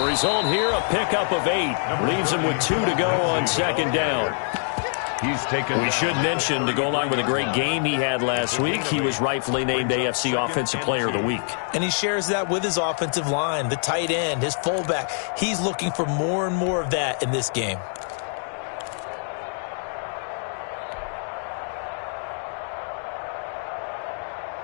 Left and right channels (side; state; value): right; silent; 62 dB below the other